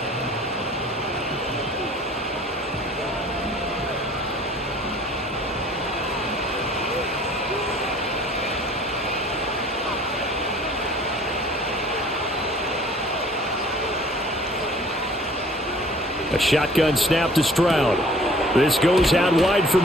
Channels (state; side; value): normal; both; correlation 0.52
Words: A shotgun snap to Stroud. This goes out wide for